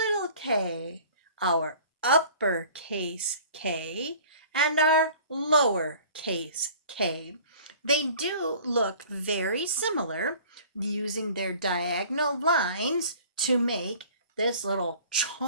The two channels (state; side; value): inverted; both; correlation -0.48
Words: k, our uppercase K and our lowercase k. They do look very similar, using their diagonal lines to make this little